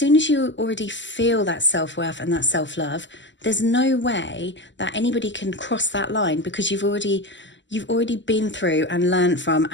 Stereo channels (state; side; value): late; right; 0.54 ms